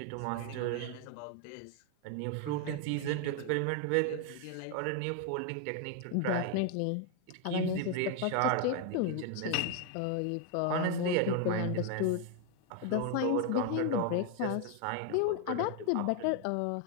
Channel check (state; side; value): different; both; correlation 0.01